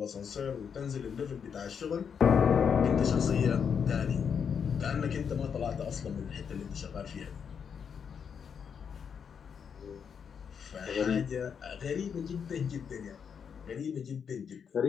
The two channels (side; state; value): right; quieter; 7.0 dB